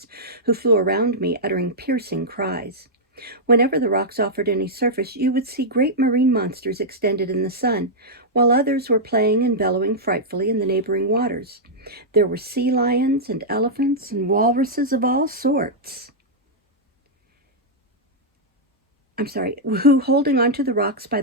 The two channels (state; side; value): normal; both; correlation -0.08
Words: who flew around me, uttering piercing cries. Whenever the rocks offered any surface, you would see great marine monsters extended in the sun, while others were playing and bellowing frightfully in the neighboring waters. There were sea lions and elephants and walruses of all sorts, who, holding onto the rocks by